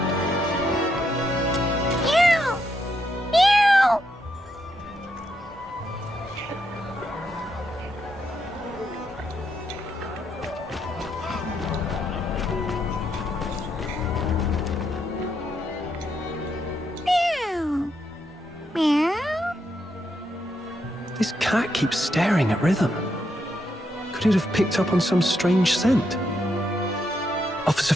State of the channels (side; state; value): both; normal; correlation 0.79